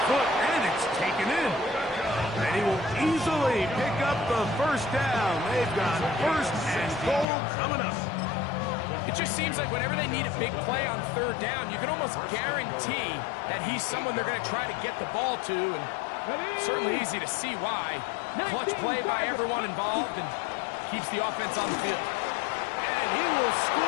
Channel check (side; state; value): right; drops out; at 7.2 s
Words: foot, and it's taken in. And he will easily pick up the 1st down. They've got 1st and goal coming up. It just seems like whenever they need a big play on 3rd down, you can almost guarantee that he's someone they're going to try to get the ball to, and certainly easy to see why. Clutch play by everyone involved and keeps the offense on the field. And he will